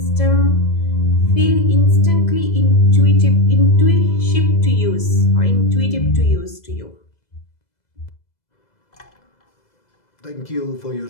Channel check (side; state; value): right; late; 2.0 ms